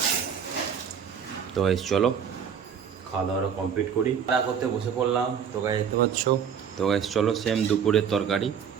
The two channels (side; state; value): left; quieter; 7.6 dB